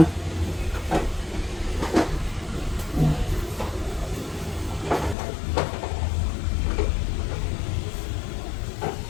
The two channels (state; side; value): drops out; right; at 5.2 s